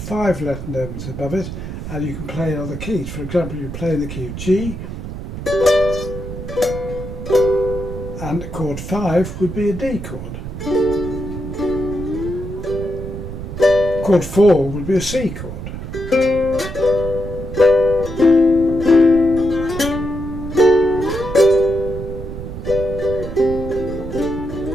letter names above it, and you can play in other keys. For example, you play in the key of G, and chord 5 would be a D chord. Chord 4 would be a C chord.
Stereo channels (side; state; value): right; noise; rumble, 8 dB below the sound